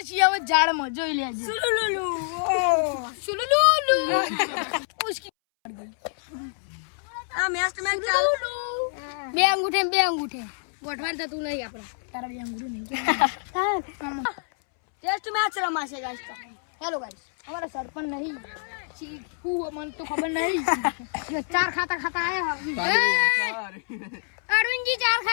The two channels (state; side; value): silent; right; 61 dB below the other